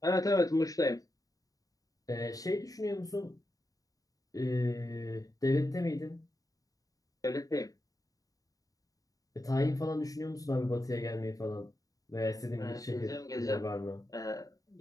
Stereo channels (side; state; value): right; late; 0.17 ms